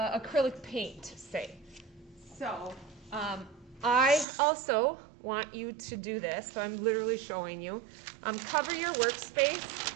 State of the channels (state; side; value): drops out; left; at 4.2 s